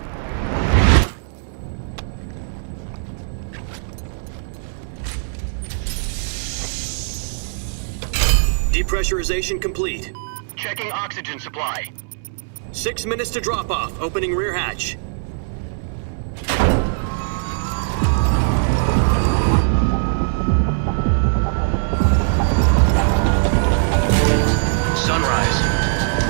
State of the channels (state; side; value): silent; left; digital silence